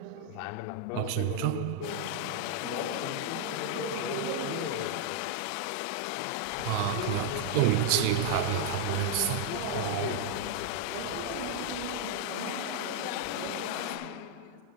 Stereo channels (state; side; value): different; both; correlation 0.00